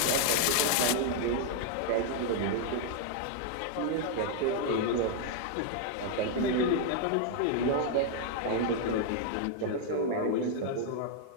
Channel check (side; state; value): both; different; correlation 0.00